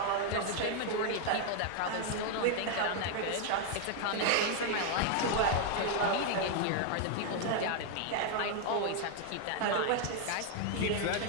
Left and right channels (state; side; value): different; both; correlation 0.00